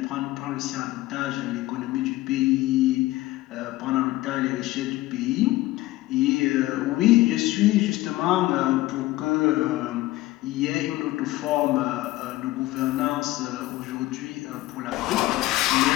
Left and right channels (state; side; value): quieter; right; 17.8 dB